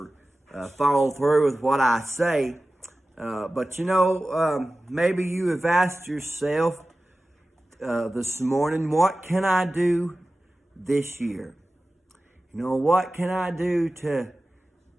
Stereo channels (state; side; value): normal; both; correlation 0.96